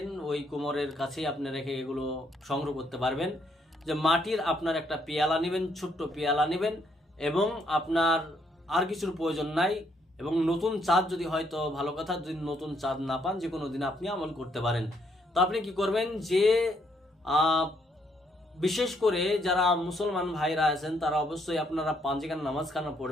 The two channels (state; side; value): normal; both; correlation 0.72